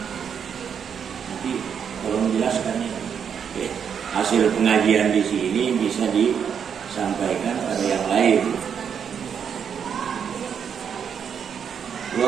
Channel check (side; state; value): left; quieter; 7.5 dB